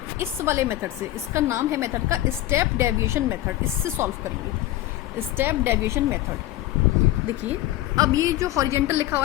इस वाले मेथड से, इसका नाम है मेथड का स्टेप डेविएशन मेथड, इससे सॉल्व करेंगे, स्टेप डेविएशन मेथड। देखिए अब ये जो हॉरिजेंटल लिखा हुआ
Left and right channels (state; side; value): quieter; right; 15.2 dB